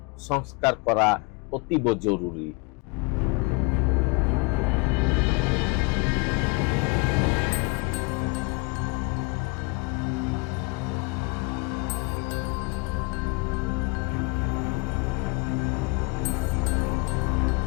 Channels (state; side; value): quieter; right; 29.8 dB